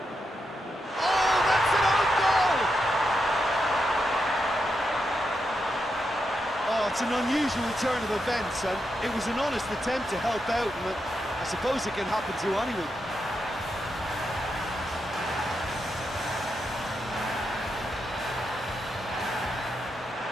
Oh, that's an own goal! Oh, it's an unusual turn of events, and it was an honest attempt to help out, and I suppose it can happen to anyone.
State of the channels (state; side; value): normal; both; correlation 0.84